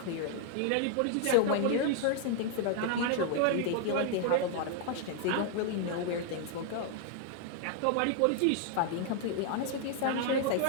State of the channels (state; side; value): different; both; correlation 0.00